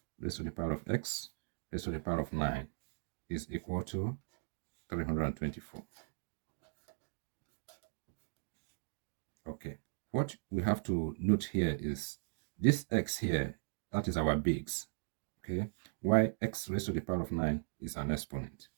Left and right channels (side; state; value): left; silent; digital silence